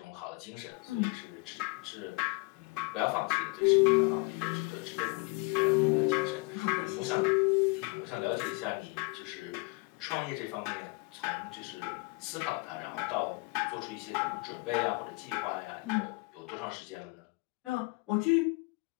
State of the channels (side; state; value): right; quieter; 28.2 dB